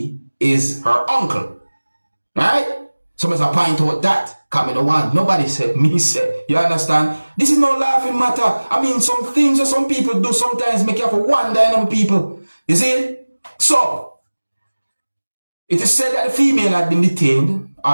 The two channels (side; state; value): both; inverted; correlation -1.00